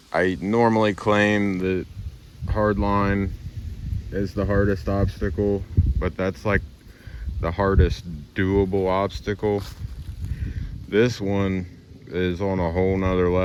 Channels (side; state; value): both; identical; correlation 1.00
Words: I normally claim that hardline is the hardest obstacle, but that's like the hardest doable obstacle. This one is on a whole nother